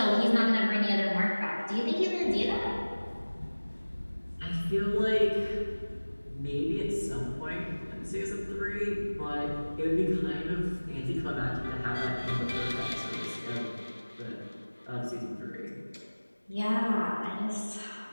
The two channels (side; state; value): both; inverted; correlation -1.00